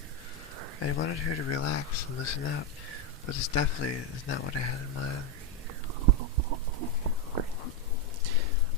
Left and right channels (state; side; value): normal; both; correlation 0.05